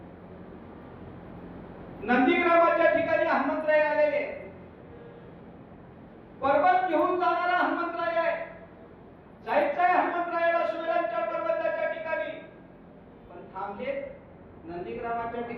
नंदीग्रामाच्या ठिकाणी हनुमंतराय आलेले. पर्वत घेऊन जाणारा हनुमंतराय आहे. जायचं आहे हनुमंतरायाला सुवेलांच्या पर्वताच्या ठिकाणी, पण थांबले नंदीग्रामाच्या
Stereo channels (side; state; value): both; identical; correlation 1.00